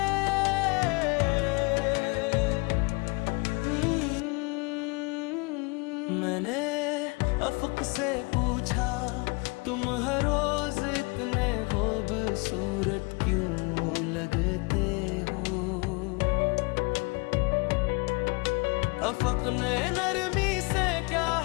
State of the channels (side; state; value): right; quieter; 28.9 dB